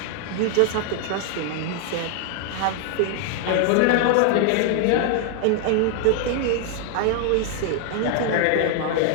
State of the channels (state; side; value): different; both; correlation 0.00